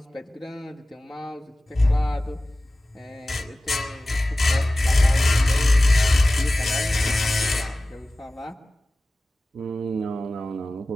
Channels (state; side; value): normal; both; correlation 0.97